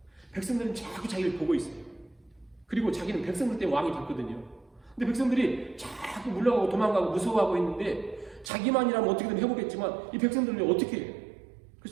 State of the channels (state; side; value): drops out; left; at 8.5 s